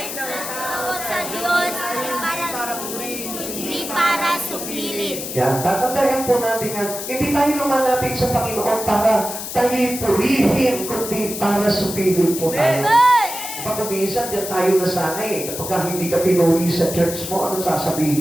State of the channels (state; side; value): noise; left; hiss, 7 dB below the sound